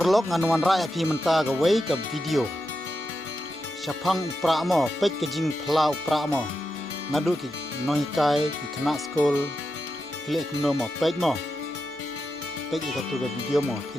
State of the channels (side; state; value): both; normal; correlation 0.88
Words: nganuan rakyat pi menta gawai ke video. Syapang upra mo pek ke jing pla upra mo. Ngadu ki noikai ki kena skol klik no mo pek mo. Pek ika tu ke video mo